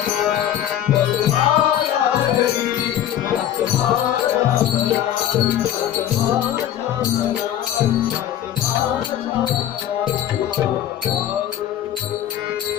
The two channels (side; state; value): right; quieter; 11.1 dB